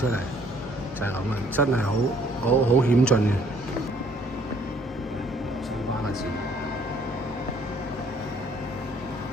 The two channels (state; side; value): normal; both; correlation 0.61